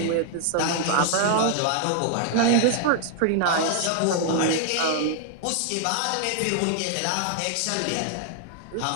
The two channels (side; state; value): both; different; correlation 0.00